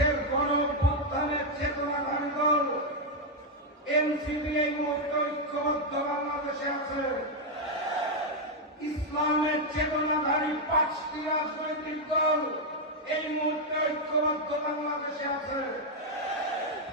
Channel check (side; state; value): both; normal; correlation 0.00